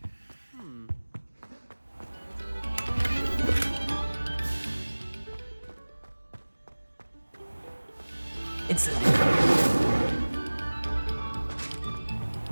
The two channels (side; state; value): both; inverted; correlation -1.00